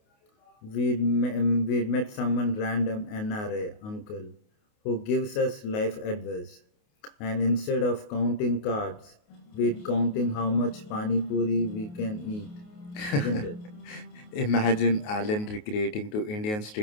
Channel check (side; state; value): right; late; 28 ms